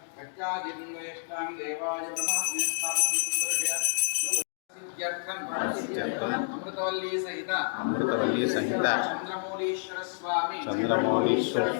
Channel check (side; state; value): right; silent; digital silence